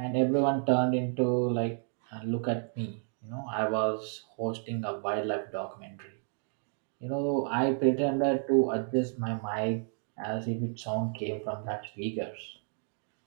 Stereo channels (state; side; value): silent; left; 57 dB below the other